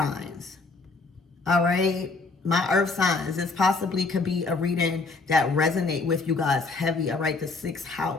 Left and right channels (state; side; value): quieter; right; 3.9 dB